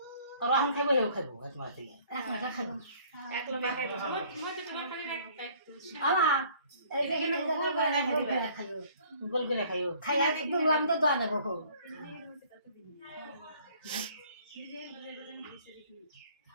আর আমি খাইবো হেও খাইবো তোমার থেকে একটা খাবো এক লোকে খাইবো আমা এই দেখেন গোল করে খাইও গোল করে খাইও খাইয়া দুলাম তো দাও না বকো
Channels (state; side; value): inverted; both; correlation -0.56